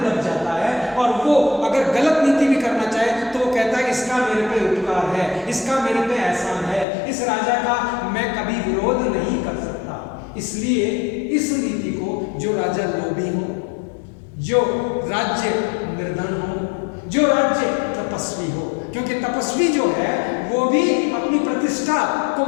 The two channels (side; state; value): right; drops out; at 6.9 s